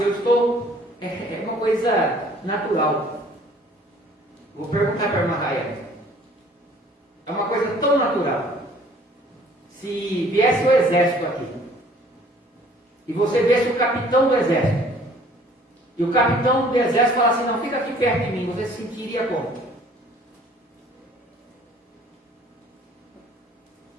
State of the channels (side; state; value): both; normal; correlation 0.55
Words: eu estou, é uma coisa natural. Vou perguntar para a irmã Raia. É uma coisa tão natural. Se viesse o exército aqui, e você visse o capitão do exército, e o capitão do exército falasse assim, não, fica aqui perto de mim, você se sentiria como?